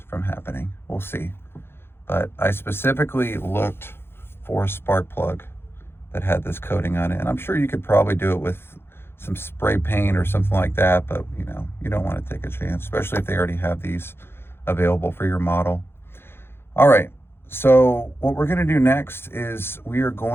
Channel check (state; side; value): late; right; 0.11 ms